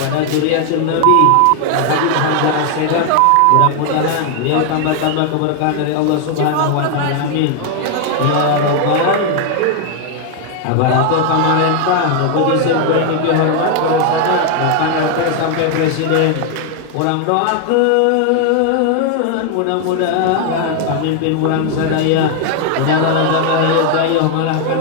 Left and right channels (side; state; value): both; different; correlation 0.00